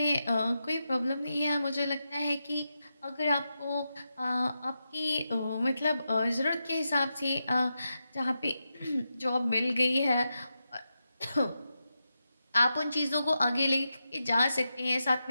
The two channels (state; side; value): inverted; both; correlation -0.88